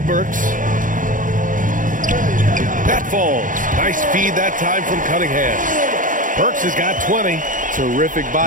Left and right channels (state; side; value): late; left; 0.38 ms